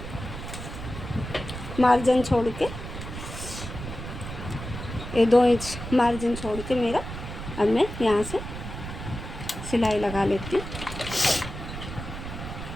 मार्जिन छोड़ के, ये 2 इंच मार्जिन छोड़ के मेरा, अब मैं यहाँ से सिलाई लगा लेती हूँ।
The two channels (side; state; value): right; noise; rumble, 9 dB below the sound